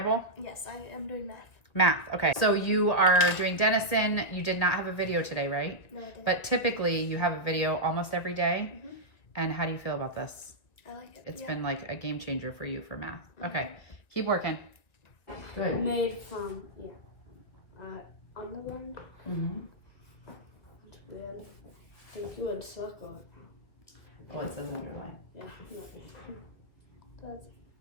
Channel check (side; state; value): right; late; 1.6 ms